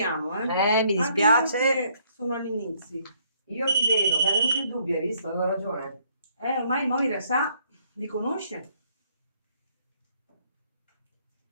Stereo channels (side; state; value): both; inverted; correlation -0.67